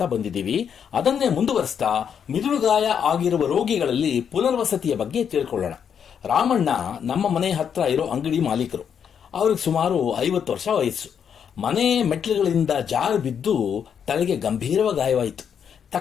ಬಂದಿದ್ದೀವಿ. ಅದನ್ನೇ ಮುಂದುವರಿಸ್ತಾ ಮಿದುಳುಗಾಯ ಆಗಿರುವ ರೋಗಿಗಳಲ್ಲಿ ಪುನರ್ವಸತಿಯ ಬಗ್ಗೆ ತಿಳ್ಕೊಳ್ಳೋಣ. ರಾಮಣ್ಣ ನಮ್ಮ ಮನೆ ಹತ್ರ ಇರೋ ಅಂಗಡಿ ಮಾಲೀಕರು. ಅವ್ರಿಗೆ ಸುಮಾರು 50 ವರ್ಷ ವಯಸ್ಸು. ಮನೆ ಮೆಟ್ಲುಗಳಿಂದ ಜಾರು ಬಿದ್ದು ತಲೆಗೆ ಗಂಭೀರವಾಗಿ ಗಾಯವಾಯಿತು.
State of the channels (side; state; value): right; quieter; 7.8 dB